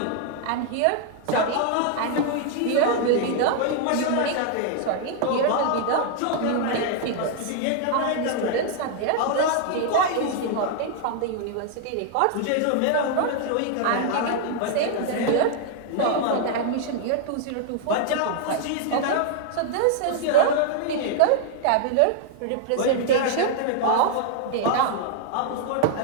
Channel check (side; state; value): both; different; correlation 0.00